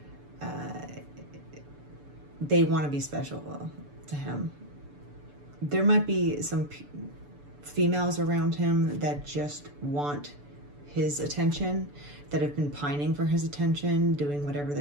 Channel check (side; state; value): left; late; 6.9 ms